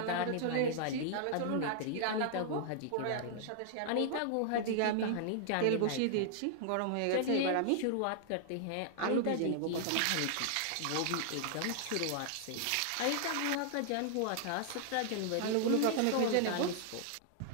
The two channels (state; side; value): different; both; correlation -0.01